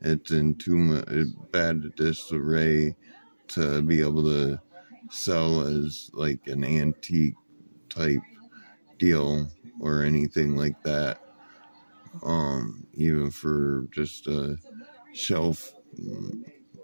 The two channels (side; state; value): both; inverted; correlation -1.00